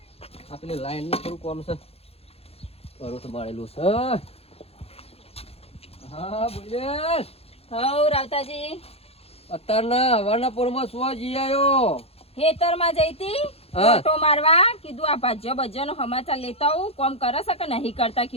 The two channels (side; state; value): right; late; 0.29 ms